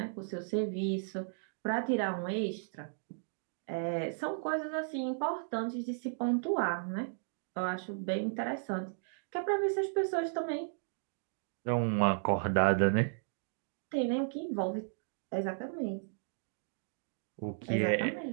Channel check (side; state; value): left; silent; digital silence